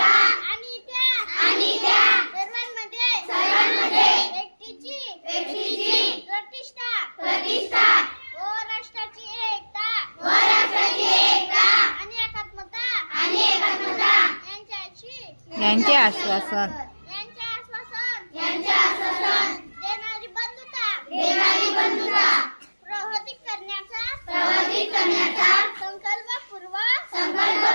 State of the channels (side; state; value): both; inverted; correlation -1.00